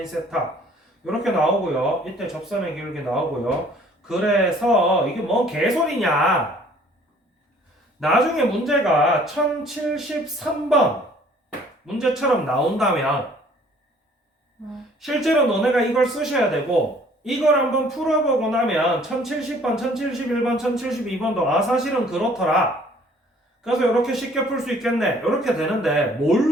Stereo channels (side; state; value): both; normal; correlation 0.56